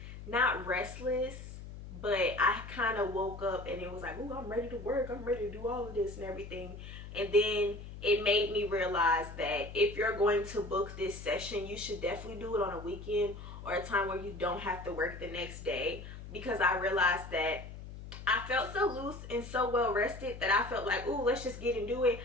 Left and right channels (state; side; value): noise; left; hum, 12 dB below the sound